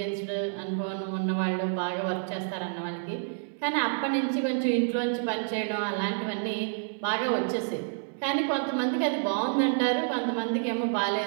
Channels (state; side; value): silent; left; digital silence